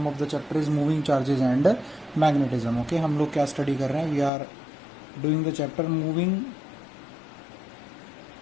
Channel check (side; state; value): right; drops out; at 4.3 s